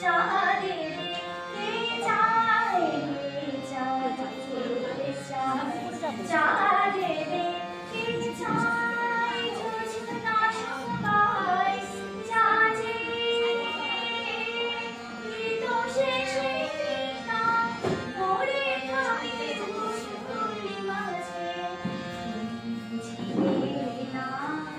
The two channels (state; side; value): identical; both; correlation 1.00